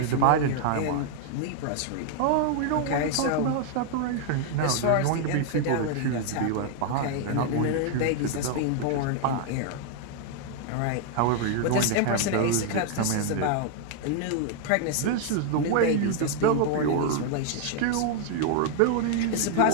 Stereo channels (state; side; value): different; both; correlation 0.00